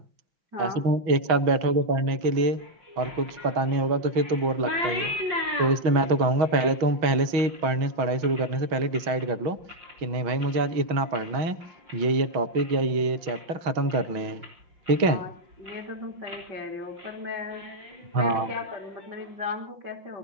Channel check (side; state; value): left; late; 6.2 ms